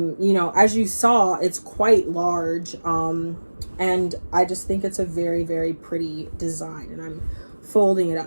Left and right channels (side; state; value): both; inverted; correlation -1.00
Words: know, as you saw, it's quite large. And I just think it's a very, very pretty design. And I'm folding it